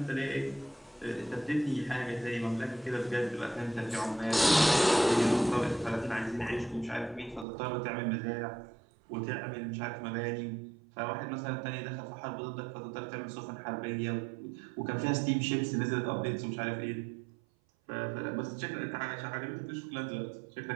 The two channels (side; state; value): left; drops out; at 7.5 s